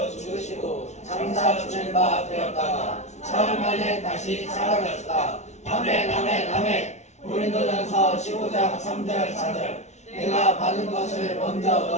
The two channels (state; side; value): late; right; 0.32 ms